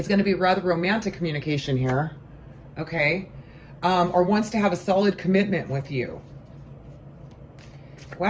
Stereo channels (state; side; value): identical; both; correlation 1.00